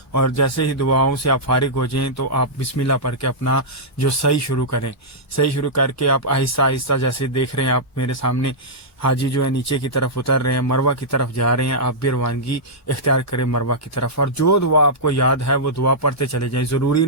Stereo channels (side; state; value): both; normal; correlation -0.11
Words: اور جیسے ہی دعاؤں سے آپ فارغ ہو جائیں تو آپ بسم اللہ پڑھ کے اپنا جو سعی شروع کریں، سعی شروع کر کے آپ آہستہ آہستہ جیسے دیکھ رہے ہیں آپ میرے سامنے حاجی جو ہے نیچے کی طرف اتر رہے ہیں، مروہ کی طرف جا رہے ہیں۔ آپ بھی روانگی اختیار کریں مروہ کی طرف، اور جو دعا آپ کو یاد ہے وہ دعا پڑھتے چلے جائیں۔ ضروری